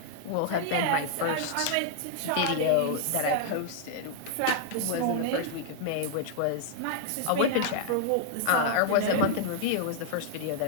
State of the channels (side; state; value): both; different; correlation -0.01